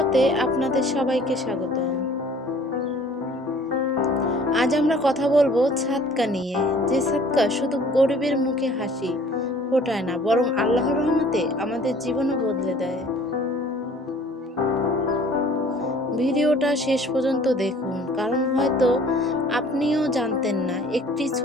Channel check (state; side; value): normal; both; correlation 0.52